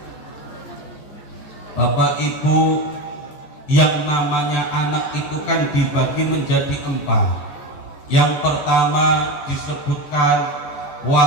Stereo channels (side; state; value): right; late; 14 ms